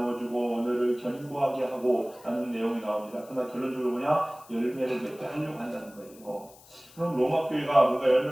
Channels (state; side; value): noise; left; hiss, 24 dB below the sound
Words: 언어를 견고하게 하고 라는 내용이 나옵니다. 그러나 결론적으로 뭐냐? 열매를 맺게 하려고 한다는 거예요. 그럼 로마 교회가 뭔가